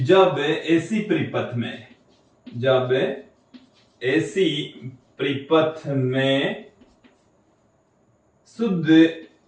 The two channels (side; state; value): both; identical; correlation 1.00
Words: जब ऐसी परिपथ में, जब ऐसी परिपथ में शुद्ध